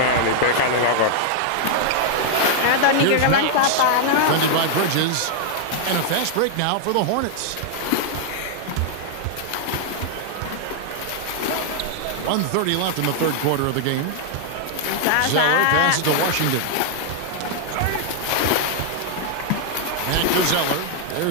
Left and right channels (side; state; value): both; different; correlation 0.00